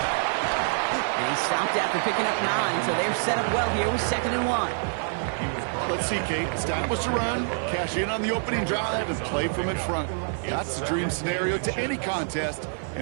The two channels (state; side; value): silent; left; digital silence